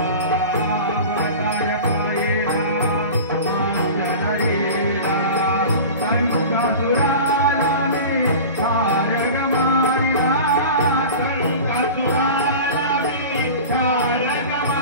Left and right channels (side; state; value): both; inverted; correlation -0.35